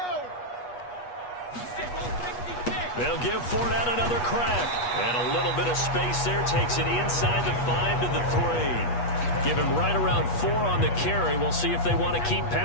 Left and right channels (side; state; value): right; late; 8.3 ms